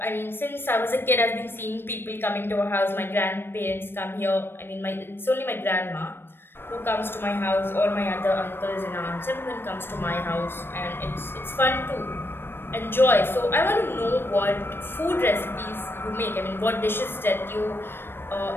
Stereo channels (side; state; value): right; late; 0.10 ms